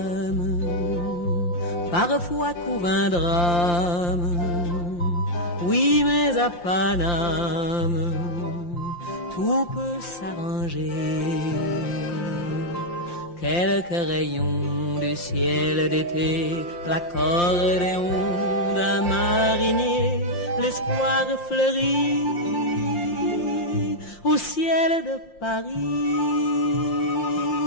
parfois court un drame. Oui, mais à Paname, tout peut s'arranger. Quelques rayons du ciel d'été, l'accordéon d'un marinier, l'espoir fleurit au ciel de Paris.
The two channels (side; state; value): right; late; 5.8 ms